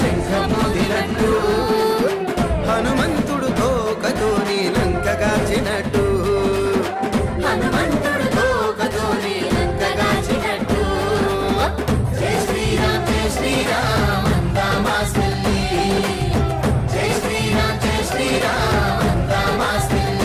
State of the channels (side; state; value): both; identical; correlation 1.00